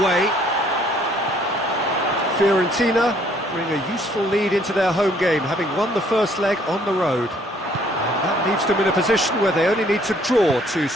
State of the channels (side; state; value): both; normal; correlation 0.63